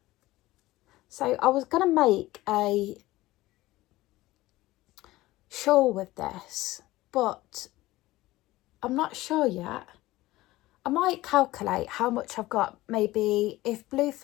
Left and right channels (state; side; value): quieter; right; 17.8 dB